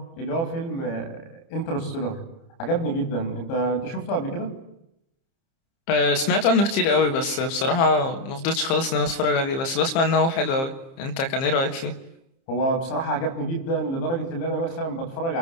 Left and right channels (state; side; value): late; right; 30 ms